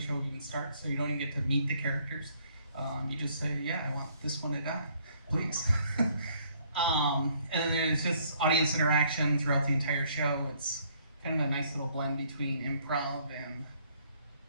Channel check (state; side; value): inverted; both; correlation -0.64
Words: even starts, so you don't even get to meet the characters. You just say, yeah, I want this one to die, please. And then there's just audience interaction throughout the entire show. It's kind of a nice little blend between improv and